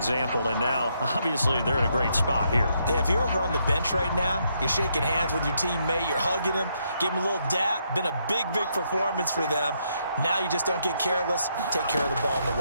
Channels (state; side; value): inverted; both; correlation -0.76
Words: and now, obviously, they're in a great spot here. Yeah, if you're over on the bench right now, you're shaking hands with your teammate, you're hugging him, give him a little dap. Been a big performance for them. Now you just don't get careless. Take care of the ball on